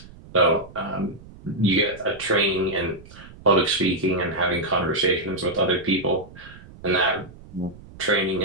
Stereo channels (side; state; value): right; noise; rumble, 19 dB below the sound